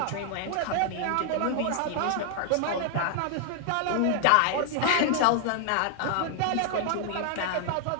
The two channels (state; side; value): different; both; correlation 0.00